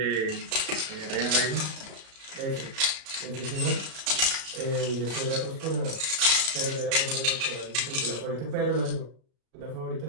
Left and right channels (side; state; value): left; late; 37 ms